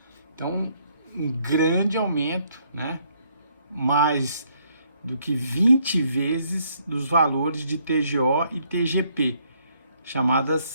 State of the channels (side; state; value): both; inverted; correlation -0.69